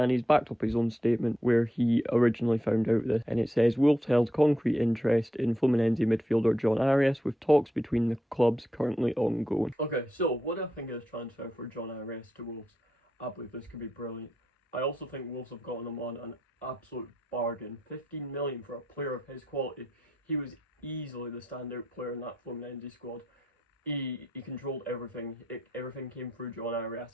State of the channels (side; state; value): both; normal; correlation 0.83